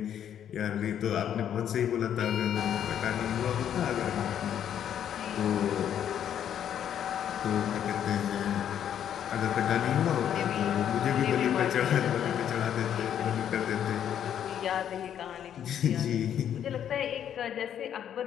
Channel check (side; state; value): right; quieter; 9.6 dB